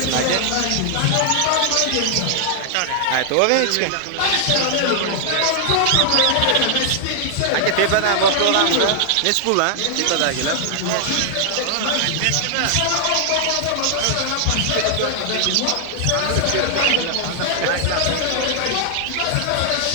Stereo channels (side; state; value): both; different; correlation -0.01